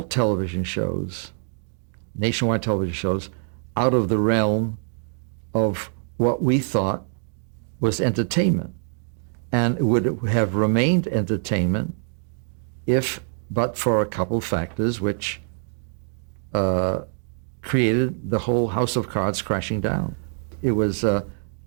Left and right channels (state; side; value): silent; left; 62 dB below the other